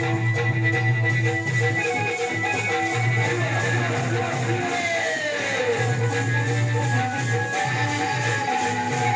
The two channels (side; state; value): both; identical; correlation 1.00